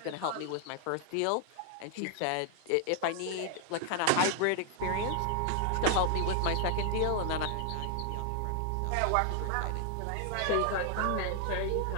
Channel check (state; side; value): different; both; correlation 0.00